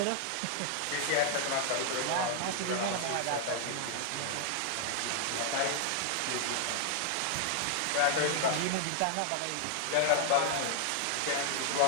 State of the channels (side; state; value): both; different; correlation 0.00